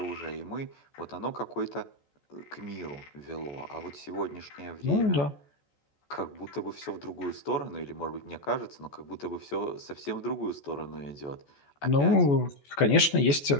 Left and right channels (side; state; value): right; late; 14 ms